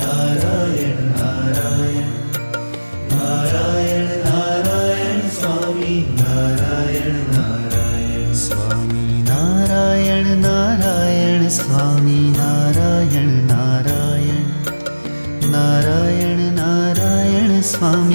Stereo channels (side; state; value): both; inverted; correlation -1.00